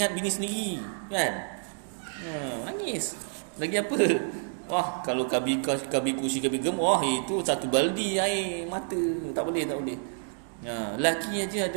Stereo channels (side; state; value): left; silent; digital silence